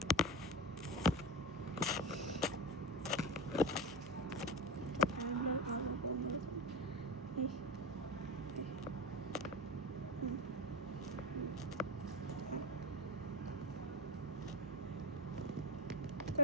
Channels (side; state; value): right; noise; hum, 18 dB below the sound